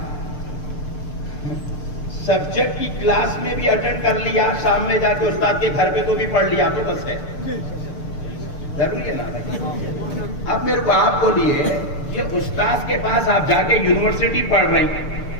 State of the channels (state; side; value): late; right; 6.7 ms